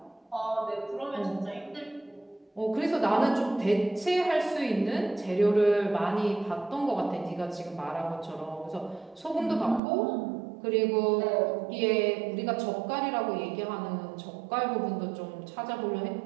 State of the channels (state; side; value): drops out; left; at 9.8 s